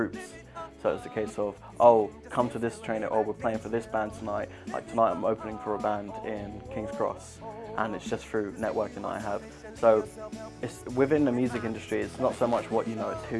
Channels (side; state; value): both; identical; correlation 1.00